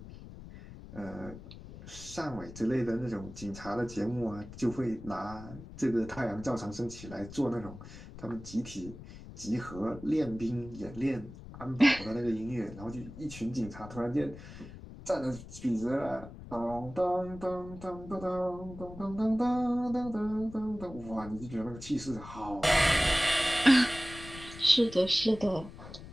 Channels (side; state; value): left; noise; rumble, 14 dB below the sound